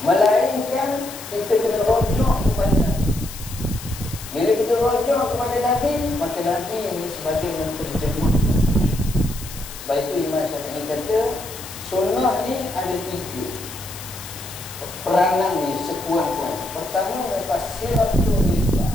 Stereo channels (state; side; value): noise; left; hiss, 13 dB below the sound